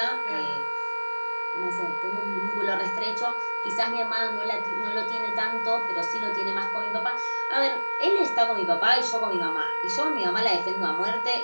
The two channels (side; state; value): both; inverted; correlation -1.00